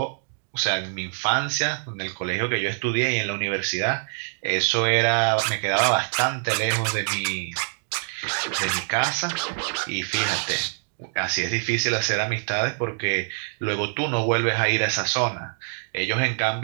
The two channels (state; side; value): silent; left; digital silence